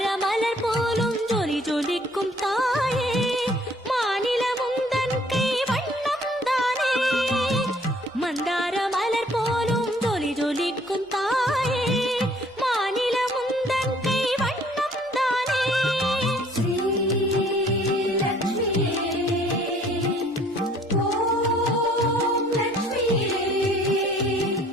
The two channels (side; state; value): both; normal; correlation 0.59